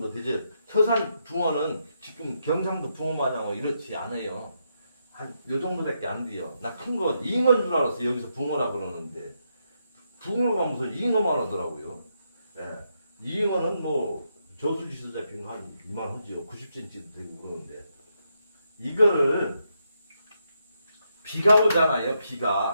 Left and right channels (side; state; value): both; inverted; correlation -0.81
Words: 되죠. 서산 붕어는 지금 경상도 붕어 마냥 이렇지 않아요. 한 요 정도밖에 안 돼요. 나 큰 거 잉어인 줄 알았어. 여기서 붕어라 그러는데 붕어가 무슨 잉어만 하더라고요. 예. 잉어는 뭐 저수지에서 잡힌 거 한 이만 하지요. 90cm도 되고 그러는데 이거를 비가 오잖아요.